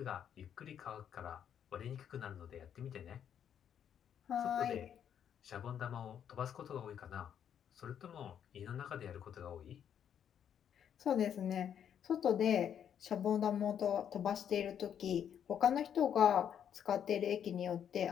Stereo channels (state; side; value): quieter; right; 8.9 dB